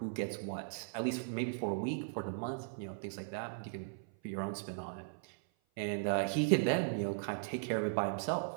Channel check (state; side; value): silent; left; 53 dB below the other